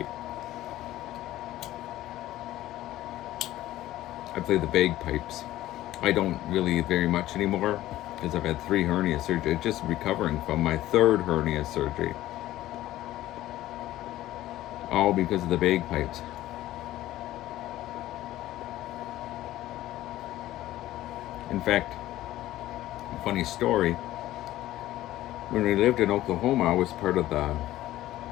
I play the bagpipes. I don't really very much anymore because I've had 3 hernia surgeries. Just recovering from my 3rd hernia surgery. All because of the bagpipes. In fact, funny story. When we lived in Oklahoma, I was part of the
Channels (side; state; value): right; quieter; 15.0 dB